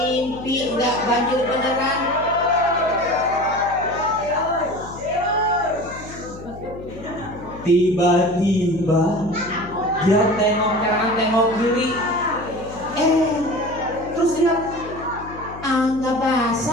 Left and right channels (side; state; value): left; noise; hum, 15 dB below the sound